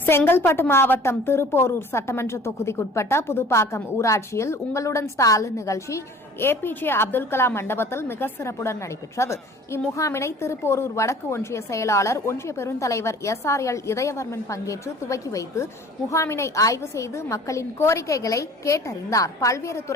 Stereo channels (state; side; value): normal; both; correlation 0.48